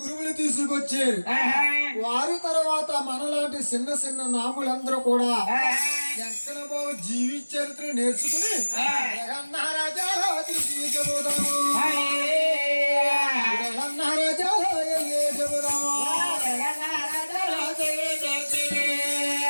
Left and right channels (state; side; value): inverted; both; correlation -1.00